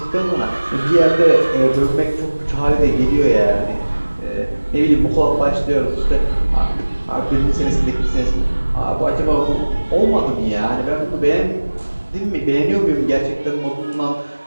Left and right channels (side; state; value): both; inverted; correlation -1.00